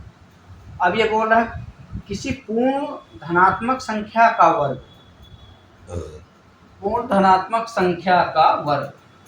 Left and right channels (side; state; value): both; identical; correlation 1.00